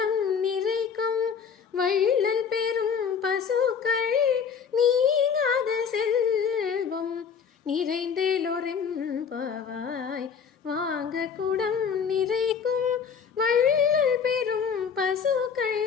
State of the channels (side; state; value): right; quieter; 6.7 dB